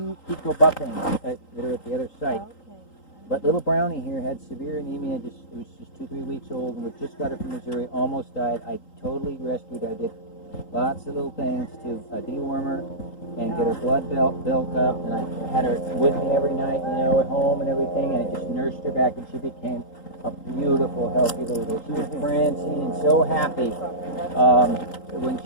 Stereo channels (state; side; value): late; right; 3.8 ms